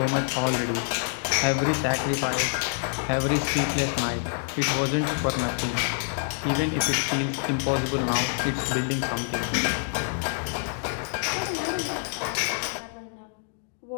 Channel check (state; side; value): silent; right; 60 dB below the other